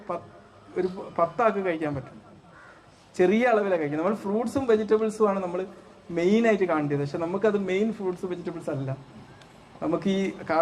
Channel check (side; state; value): both; identical; correlation 1.00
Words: ഒരു 10 ആൾക്ക് കഴിക്കാൻ പറ്റും. ചെറിയ അളവിലാണ് കഴിക്കുന്നത്. നമ്മൾ ഫ്രൂട്ട്സും വെജിറ്റബിൾസും ആണ് നമ്മൾ മെയിനായിട്ട് കാണേണ്ടത്. പക്ഷെ നമുക്കത് മെയിൻ ഫ്രൂട്ട്സ് വെജിറ്റബിൾസ് അല്ല. നമുക്ക് ഈ